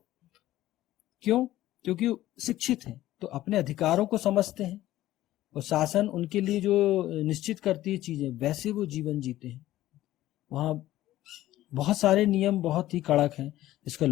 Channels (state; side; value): quieter; right; 14.8 dB